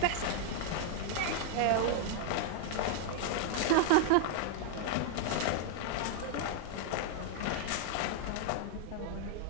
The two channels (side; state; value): both; different; correlation 0.00